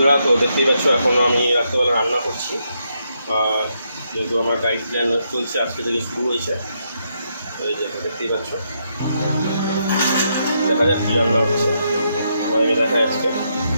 তো দেখতেই পাচ্ছ এখন আমি রাত্রেবেলা রান্না করছি। যেহেতু আমার ডায়েট প্ল্যান চলছে, আজকে থেকে শুরু হয়েছে। এই যে দেখতেই পাচ্ছ, দেখা যাক কী রান্না হচ্ছে, তোমাদেরকে দেখায় আজকে।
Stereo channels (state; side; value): inverted; both; correlation -0.79